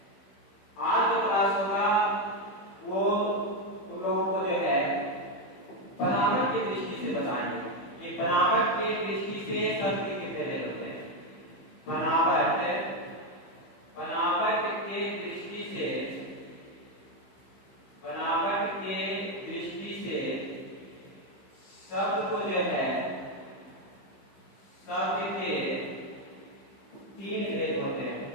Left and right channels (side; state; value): right; late; 15 ms